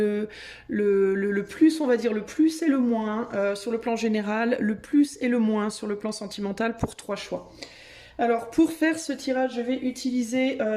plus, on va dire le plus et le moins sur le plan général, le plus et le moins sur le plan sentimental pour 3 choix. Alors pour faire ce tirage, je vais utiliser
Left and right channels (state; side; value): identical; both; correlation 1.00